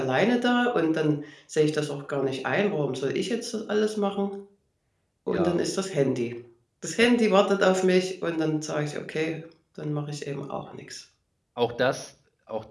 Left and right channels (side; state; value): both; identical; correlation 1.00